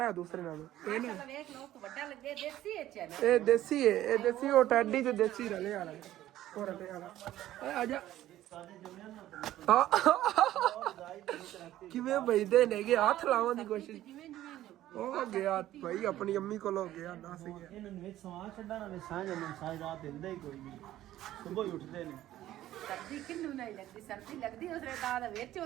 ਹੈ ਦੂਸਰੇ ਨਾਲੋਂ ਇਹ ਨਾ ਵੇਖ ਲੋ ਵੱਡਾ ਲੱਗੇ ਦੇਸੀ ਐਚ ਹੈ ਇਹ ਦੇਸੀ ਹੈ ਇਹ ਦੇਸੀ ਉਹ ਟੈਡੀ ਤੇ ਦੇਸੀ ਰਲੇ ਵਾਲਾ ਉਹ ਰਲੇ ਵਾਲਾ ਆ ਜਾ ਕਿਵੇਂ ਬਈਦੇ ਨੇਗੇ ਹੱਥ ਲਾਉਣ ਦੀ ਕੋਸ਼ਿਸ਼ ਉਹ ਗਿਆ ਭਾਈ ਆਪਣੀ ਅੰਮੀ ਕੋਲ ਹੋ ਗਿਆ ਦੱਸ ਗਿਆ ਇਹਨਾਂ ਨੂੰ ਵਿੱਚ ਸਵਾਂ ਛੱਡਣਾ ਨਾ ਸਾਂਝ ਨੂੰ ਸਾਂਝ ਰਾਤ ਦਿੰਦਾ ਹੀ ਕੋਈ ਨਹੀਂ ਸਵੇਰ ਹੀ ਉੱਠਦੇ ਨੇ ਸਰਦੀ ਕਿੰਨੂੰ ਨਹੀਂ ਲੱਗਦੀ ਸਰਦੀ ਲੱਗਦੀ ਉਸਰੇ ਦਾ ਵਿੱਚ ਉਹ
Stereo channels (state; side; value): quieter; left; 13.8 dB